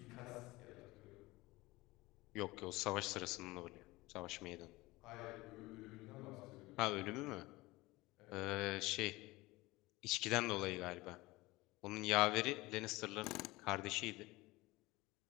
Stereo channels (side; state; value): right; quieter; 20.8 dB